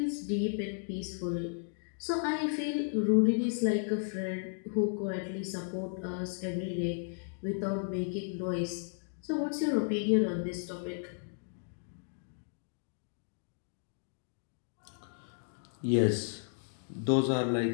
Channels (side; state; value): right; silent; digital silence